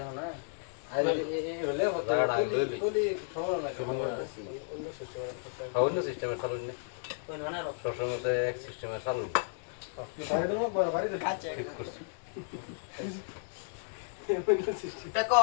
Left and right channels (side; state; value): right; silent; digital silence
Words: না আর এই বলে হতো বলি সময় না অন্য সিস্টেমে চালুন না সবসময় তো এক সিস্টেমে চালুন বাড়ি দেবো বাড়ি দেবো ঠিক করছি টাকা